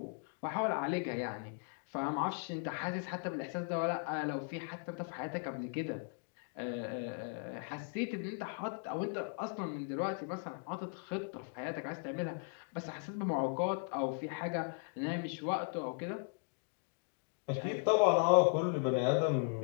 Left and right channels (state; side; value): silent; right; 53 dB below the other